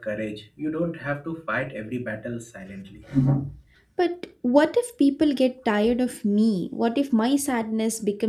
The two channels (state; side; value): identical; both; correlation 1.00